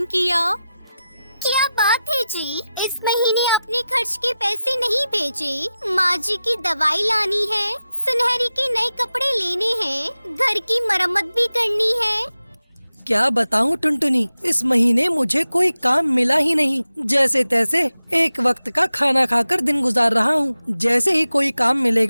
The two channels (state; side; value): inverted; both; correlation -0.93